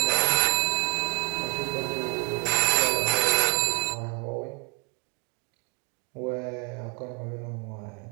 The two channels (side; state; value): left; quieter; 36.0 dB